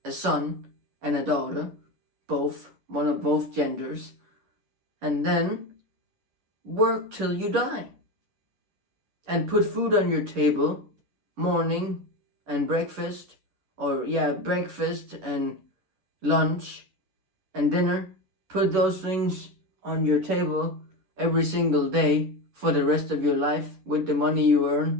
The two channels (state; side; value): late; left; 11 ms